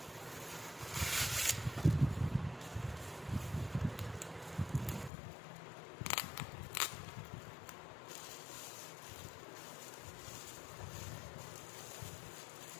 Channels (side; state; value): right; drops out; at 5.1 s